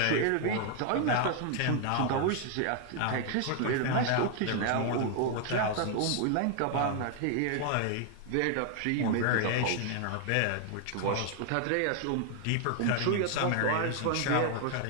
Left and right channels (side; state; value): both; different; correlation 0.00